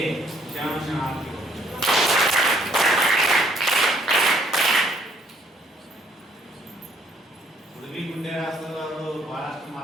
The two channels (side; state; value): both; normal; correlation 0.65